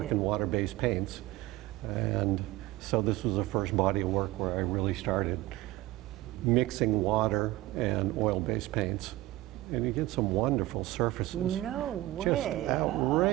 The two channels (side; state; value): left; quieter; 17.6 dB